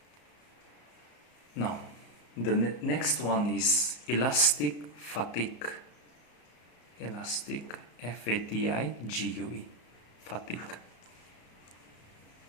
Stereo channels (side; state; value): right; late; 34 ms